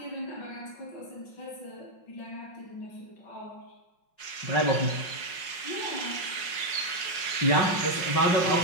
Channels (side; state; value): right; late; 5.5 ms